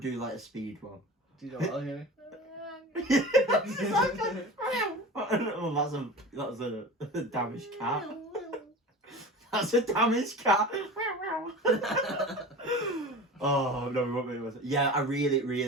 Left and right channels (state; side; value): normal; both; correlation 0.34